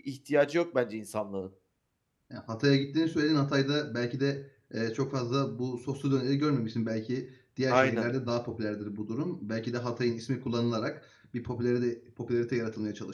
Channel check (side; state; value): both; identical; correlation 1.00